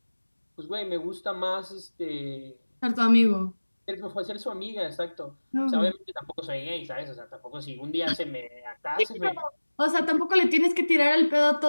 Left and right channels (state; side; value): inverted; both; correlation -1.00